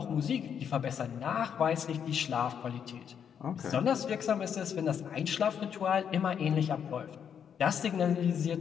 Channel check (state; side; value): quieter; right; 8.0 dB